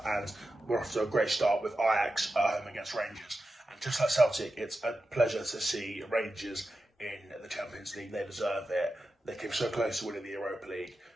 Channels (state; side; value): normal; both; correlation 0.91